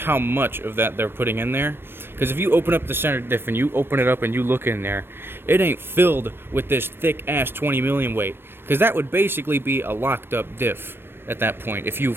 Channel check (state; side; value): late; left; 0.10 ms